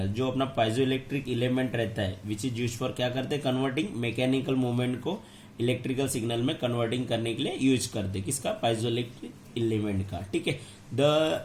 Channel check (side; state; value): both; identical; correlation 1.00